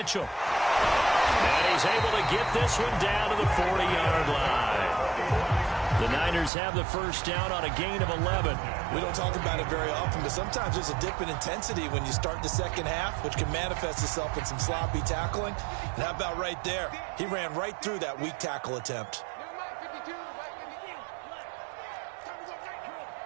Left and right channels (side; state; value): left; drops out; at 6.5 s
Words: And he's able to get this one down to the 40-yard line. The Niners have the first down on a gain of 11. We don't talk about it very often, but sometimes there's a dip in intensity when you start the second half, which can manifest itself in some sloppy tackling. And how about right there? He ran right through that weak tackle attempt.